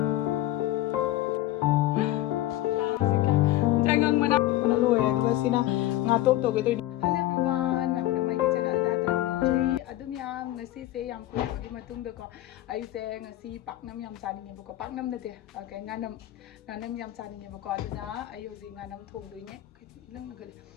Jangan mana lu ya juga sina ngatop to gitu. Hello everyone, namanya mai ke channel da tram nongri adum yam ngasi se yam ko gi matung da ko ai se ngasi paknam yam chaning nge ko paknam na te kai nganam yam chaning nge ko aduna ai hoji nganam thong doi ne lang na gal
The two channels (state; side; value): quieter; right; 15.1 dB